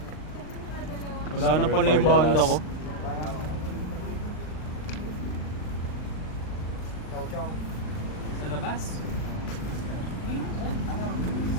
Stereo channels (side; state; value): right; late; 39 ms